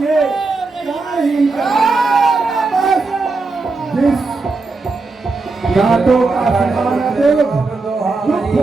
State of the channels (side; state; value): left; quieter; 3.8 dB